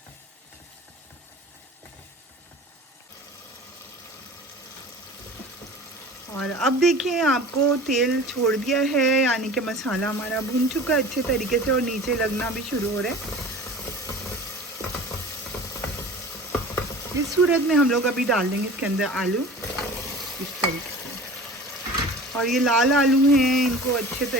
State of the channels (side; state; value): both; normal; correlation 0.40